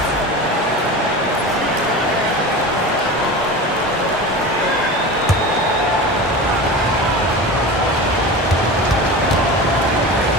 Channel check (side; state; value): both; normal; correlation 0.30